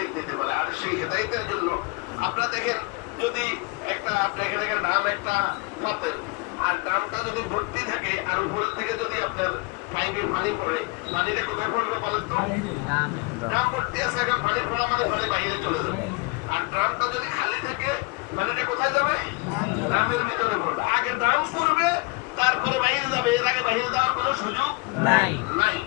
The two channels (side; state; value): right; quieter; 28.1 dB